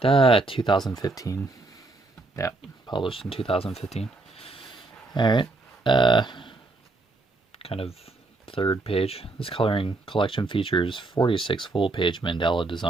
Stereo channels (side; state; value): left; quieter; 3.2 dB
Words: right. 2015. Yeah, published in 2015. Alright. Kind of third page. This coloring collection features 46 full-page Mandela